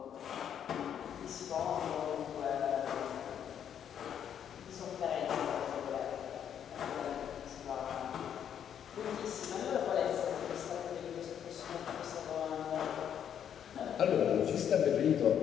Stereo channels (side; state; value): right; quieter; 9.0 dB